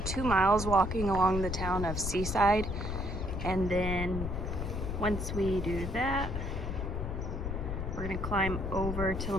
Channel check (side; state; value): left; noise; rumble, 4 dB below the sound